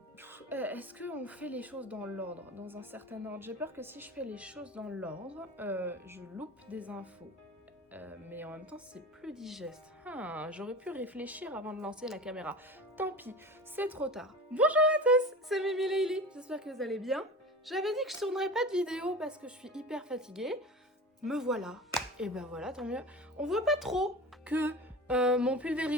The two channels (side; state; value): both; normal; correlation 0.34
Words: est-ce qu'on fait les choses dans l'ordre, dans un certain ordre? J'ai peur que si je fais les choses dans l'ordre, je loupe des infos. Mais en même temps, c'est plus digeste. J'aurais pu réfléchir avant de lancer la caméra. Tant pis, c'est trop tard. Bonjour à tous, c'est Mimi Leili. J'espère que vous allez bien. J'avais dit que je tournerais pas de vidéo parce que je suis hyper fatiguée. Me voilà. Et ben voilà, tant mieux. On voit pas trop que mon